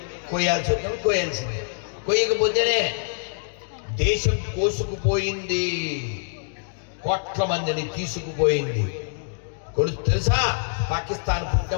కొయ్యాల్సి వస్తాం, కొయ్యాల్సిందే. కొయ్యకపోతేనే దేశం కోసుకుపోయింది, కోట్ల మందిని తీసుకుపోయింది. తెలుసా, పాకిస్తాన్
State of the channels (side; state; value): right; silent; digital silence